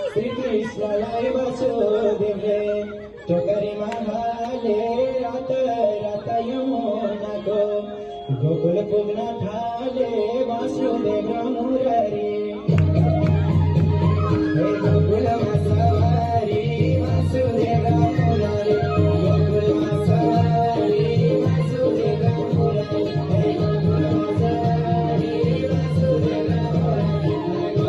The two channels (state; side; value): identical; both; correlation 1.00